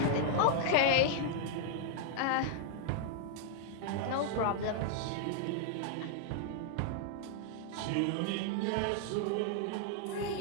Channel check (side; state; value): both; different; correlation -0.01